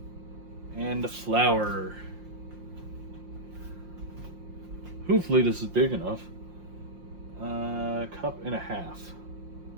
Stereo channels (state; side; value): late; left; 5.7 ms